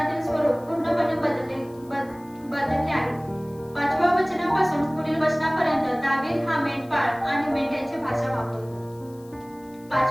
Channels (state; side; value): noise; left; hiss, 27 dB below the sound